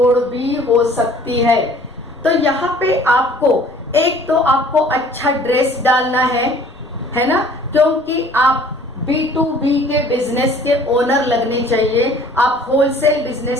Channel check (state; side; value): noise; left; rumble, 29 dB below the sound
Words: भी हो सकती है। तो यहाँ पे आपको एक तो आपको अच्छा ड्रेस डालना है ना, क्योंकि आप B2B के बिजनेस के ओनर लगने चाहिए, आप होलसेल